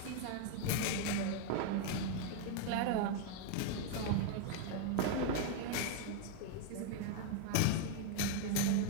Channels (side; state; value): both; different; correlation 0.01